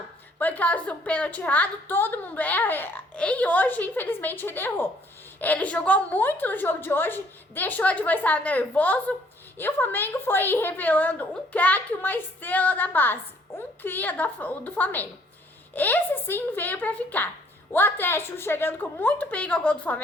Por causa de um pênalti errado, todo mundo erra, e hoje, infelizmente, ele errou. Ele jogou muito no jogo de hoje, deixou o adversário nervoso, e o Flamengo foi revelando um craque, uma estrela da base, um cria do Flamengo. Esse sim veio para ficar. O Atlético chegando com muito perigo ao gol do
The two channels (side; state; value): both; normal; correlation 0.62